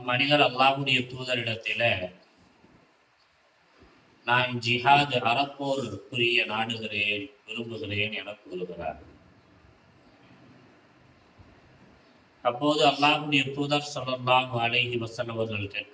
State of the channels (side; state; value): both; identical; correlation 1.00